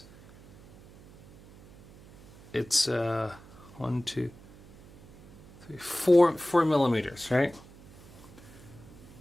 it's 4 millimeters, right?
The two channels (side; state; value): right; noise; hum, 22 dB below the sound